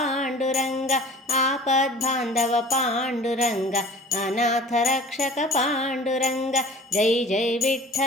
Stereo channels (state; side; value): normal; both; correlation 0.43